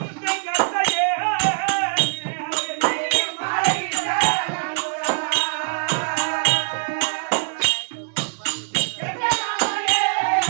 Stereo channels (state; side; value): silent; left; digital silence